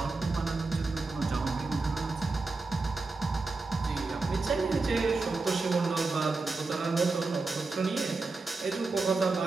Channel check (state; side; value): quieter; left; 3.7 dB